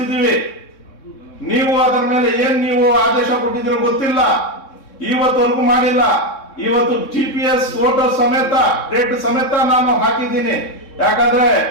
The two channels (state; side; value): late; right; 3.6 ms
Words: ನೀವು ಅದರ ಮೇಲೆ ನೀವು ಆದೇಶ ಕೊಟ್ಟಿದ್ದೀರೋ ಗೊತ್ತಿಲ್ಲ, ಇವತ್ತವರೆಗೂ ಮಾಡಿಲ್ಲ. ಇವತ್ತು GPS ಫೋಟೋ ಸಮೇತ, ಡೇಟ್ ಸಮೇತ ನಾನು ಹಾಕಿದ್ದೀನಿ. ಯಾಕಂದ್ರೆ